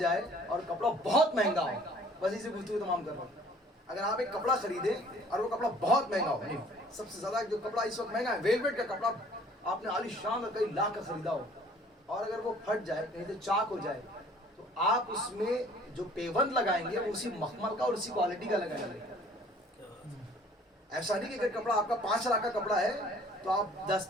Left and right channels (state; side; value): normal; both; correlation 0.54